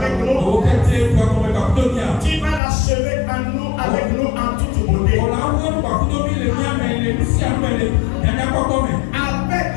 nous, tu vas l'achever en nous, avec nous en toute beauté. Avec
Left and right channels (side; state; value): right; drops out; at 2.6 s